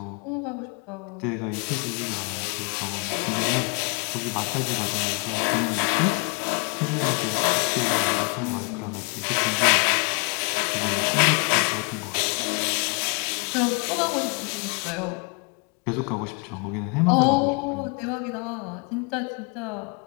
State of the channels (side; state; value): right; quieter; 33.1 dB